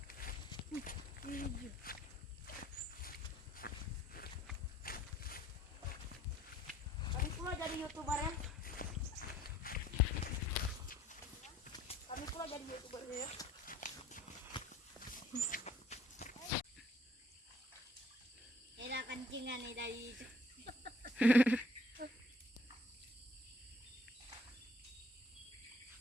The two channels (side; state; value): both; normal; correlation 0.58